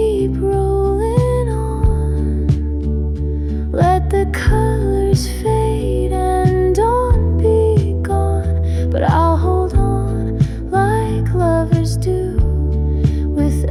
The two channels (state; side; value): identical; both; correlation 1.00